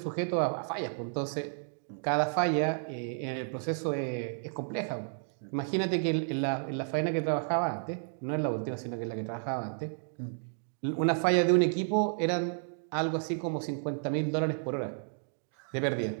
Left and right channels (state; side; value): silent; left; digital silence